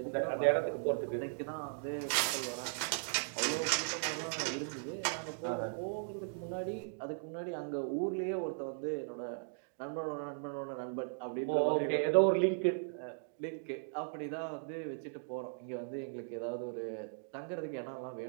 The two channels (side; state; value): left; silent; digital silence